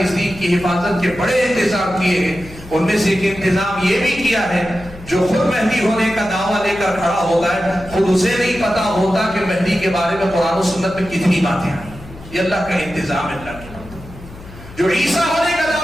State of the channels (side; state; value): left; noise; hum, 17 dB below the sound